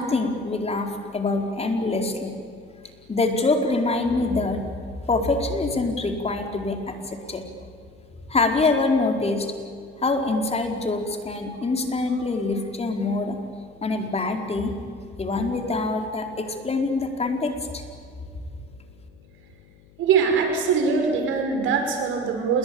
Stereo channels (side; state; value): left; noise; hum, 27 dB below the sound